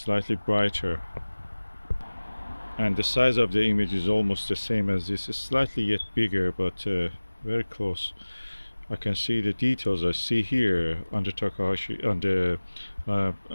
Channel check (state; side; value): inverted; both; correlation -1.00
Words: brighter, and the size of the image is almost the same as this. It's slightly yet bigger, but very close. I can see the details I see here on the Takahashi, on the